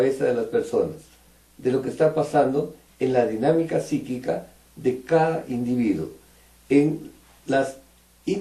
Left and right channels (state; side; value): identical; both; correlation 1.00